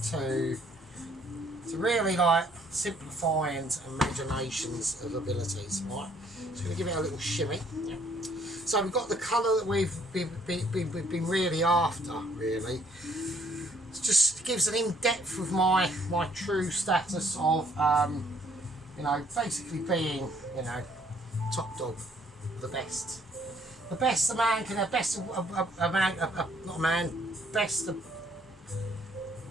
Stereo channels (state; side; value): normal; both; correlation 0.63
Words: to really like simplify and imaginations of abilities, right? So we're going to give it a little shimmy. Yeah. So we've got the colour that we've been really after, really. It just gives an in-depth of my true status of, you know, basically being, you know, top dog, the best. The best a man can have, best a man, not a man, best